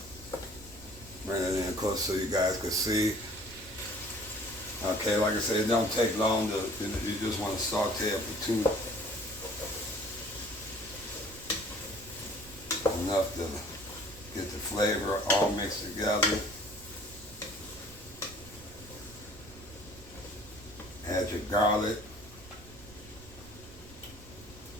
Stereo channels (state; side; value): noise; right; rumble, 19 dB below the sound